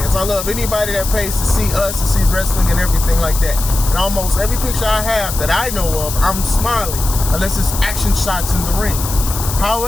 I love anybody that pays to see us, to see wrestling and everything like that. And almost every picture I have that I know of, I'm smiling, unless it's action shots in the ring.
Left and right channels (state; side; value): noise; left; hiss, 7 dB below the sound